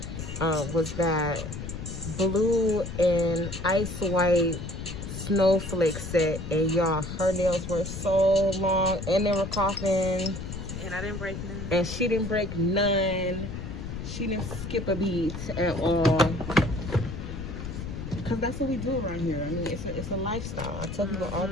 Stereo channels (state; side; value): noise; left; rumble, 7 dB below the sound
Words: Was that blue and ice white snowflake set, and y'all, her nails were so long and they were coughing, and I didn't break none, and she didn't break none. She didn't skip a beat at all, because that's what we do around here. I mean, it's a lifestyle. I tell people all